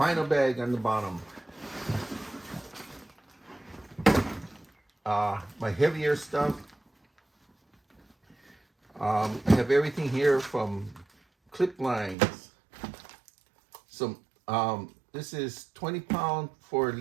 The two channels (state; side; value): drops out; left; at 12.2 s